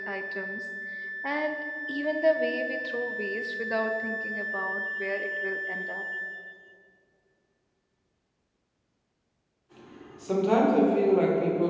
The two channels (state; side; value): identical; both; correlation 1.00